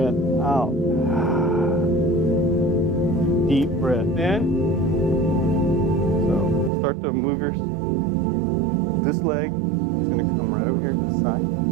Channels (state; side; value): drops out; left; at 6.7 s